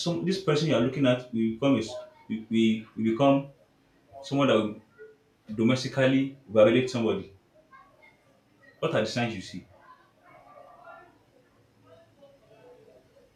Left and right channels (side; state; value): both; identical; correlation 1.00